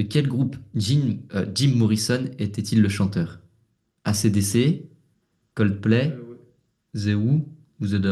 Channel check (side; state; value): both; identical; correlation 1.00